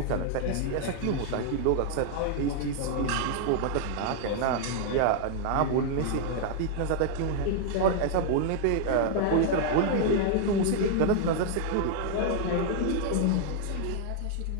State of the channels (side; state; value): both; different; correlation 0.00